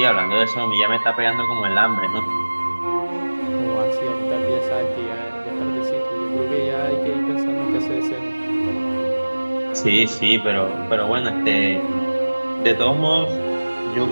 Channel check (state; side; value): inverted; both; correlation -1.00